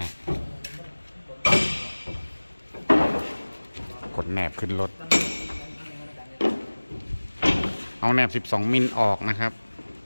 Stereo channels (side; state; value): both; inverted; correlation -1.00